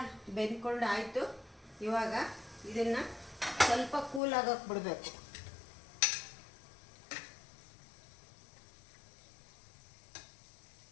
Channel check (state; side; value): drops out; right; at 4.2 s